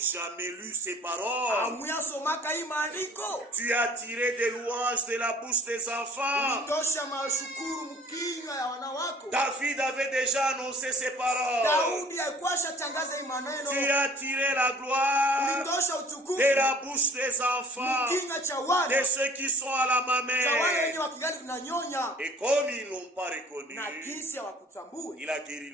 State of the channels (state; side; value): normal; both; correlation 0.51